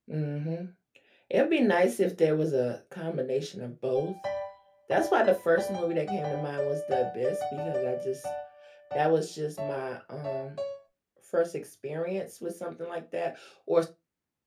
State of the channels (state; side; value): identical; both; correlation 1.00